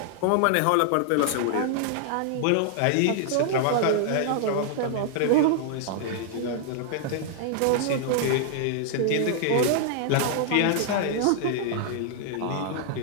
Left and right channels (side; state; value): both; different; correlation -0.01